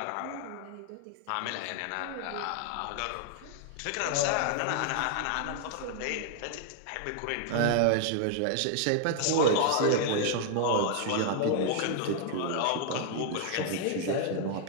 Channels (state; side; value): different; both; correlation 0.00